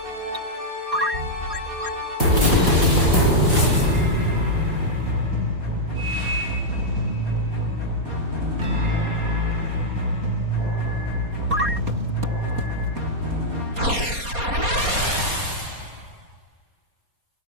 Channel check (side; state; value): left; late; 4.2 ms